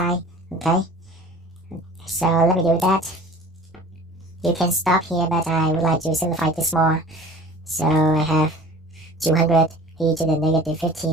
okay? So let me do that. You can stop here, but I would like to simplify this more. So I have 200 e to the negative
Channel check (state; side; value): normal; both; correlation 0.44